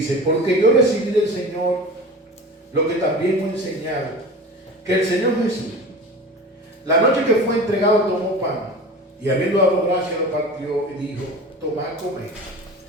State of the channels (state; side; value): normal; both; correlation 0.35